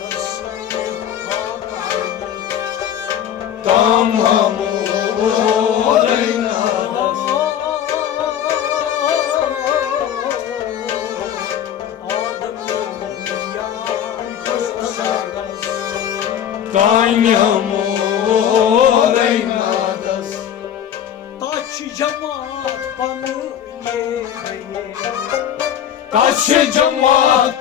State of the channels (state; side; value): quieter; right; 9.8 dB